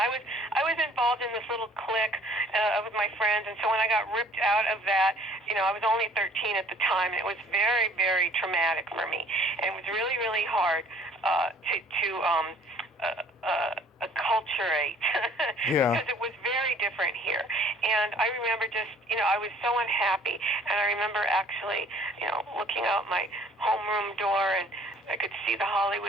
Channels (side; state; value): both; normal; correlation 0.55